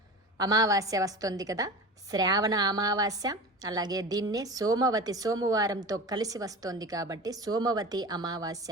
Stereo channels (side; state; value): both; normal; correlation 0.31